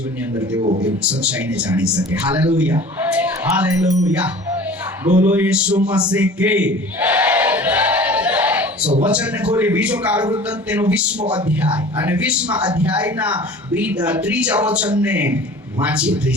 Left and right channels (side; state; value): both; normal; correlation 0.43